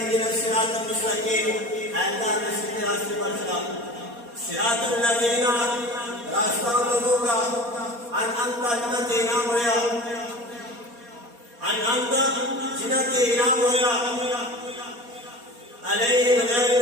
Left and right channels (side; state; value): left; late; 4.2 ms